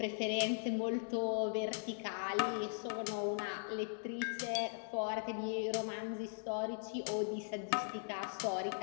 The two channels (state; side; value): silent; right; digital silence